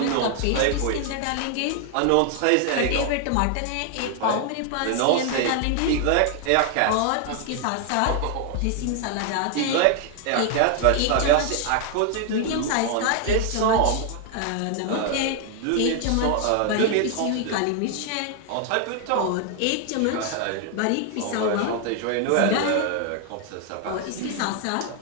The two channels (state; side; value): different; both; correlation 0.00